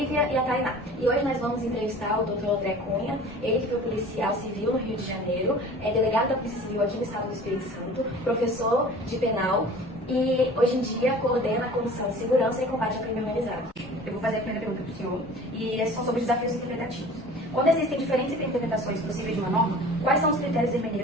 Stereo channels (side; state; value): both; normal; correlation 0.43